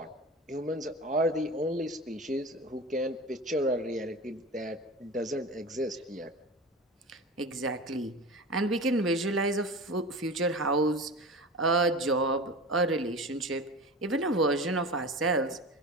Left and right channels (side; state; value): both; normal; correlation 0.31